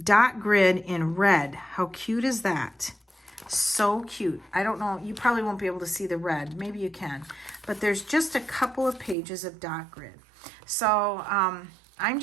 grid in red. How cute is that? So cute. I don't know, you probably won't be able to see the red. Maybe you can. But there's just a couple of pages of dot grid. So I'm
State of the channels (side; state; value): left; drops out; at 9.2 s